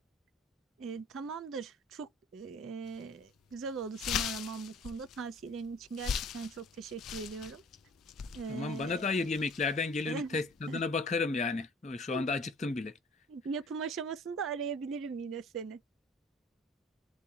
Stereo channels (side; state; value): both; normal; correlation 0.50